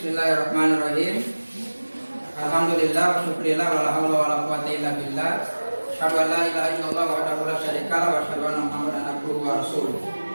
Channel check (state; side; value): inverted; both; correlation -1.00